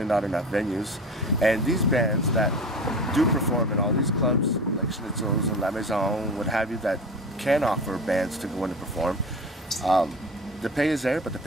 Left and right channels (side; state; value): both; normal; correlation 0.33